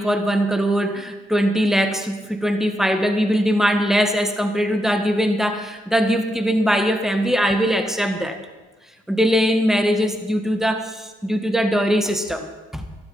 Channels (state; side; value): normal; both; correlation 0.83